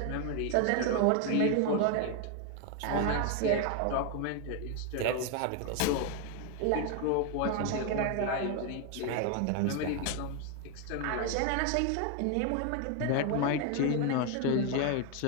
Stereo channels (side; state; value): both; different; correlation 0.01